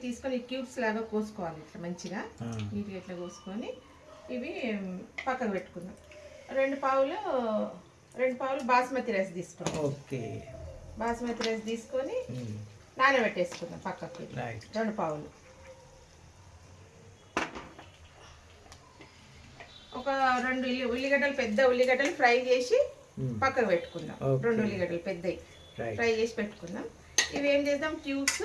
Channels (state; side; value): identical; both; correlation 1.00